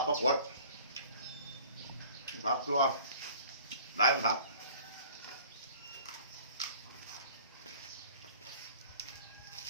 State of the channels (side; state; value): both; inverted; correlation -0.49